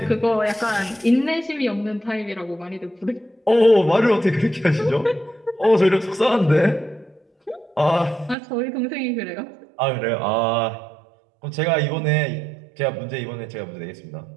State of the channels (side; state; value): left; drops out; at 8.3 s